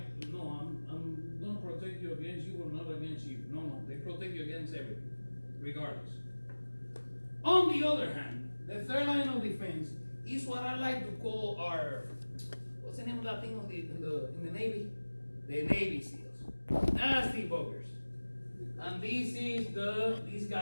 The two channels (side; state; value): both; inverted; correlation -1.00